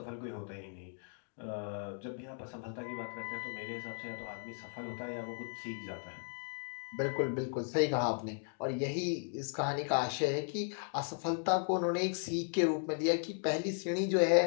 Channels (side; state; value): right; silent; 54 dB below the other